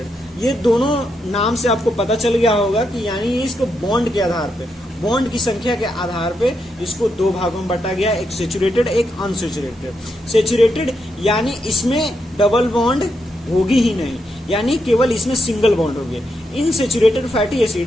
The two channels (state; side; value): normal; both; correlation 0.82